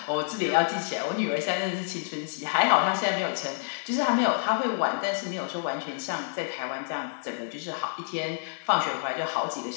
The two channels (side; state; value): right; silent; 59 dB below the other